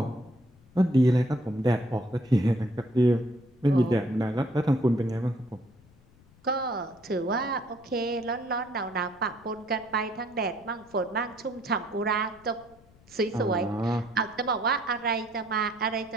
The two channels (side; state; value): left; noise; rumble, 28 dB below the sound